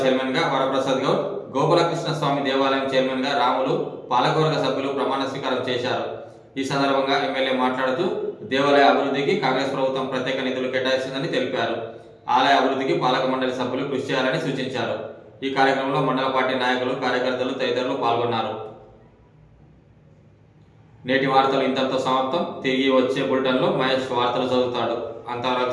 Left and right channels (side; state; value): both; identical; correlation 1.00